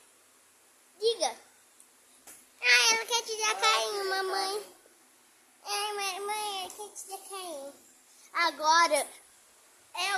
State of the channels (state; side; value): identical; both; correlation 1.00